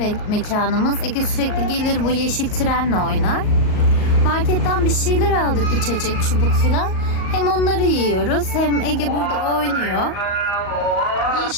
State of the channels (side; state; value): right; late; 38 ms